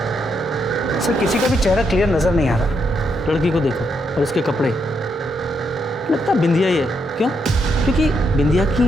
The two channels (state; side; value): normal; both; correlation 0.78